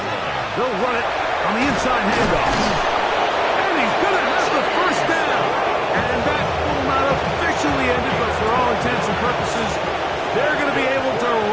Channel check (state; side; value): identical; both; correlation 1.00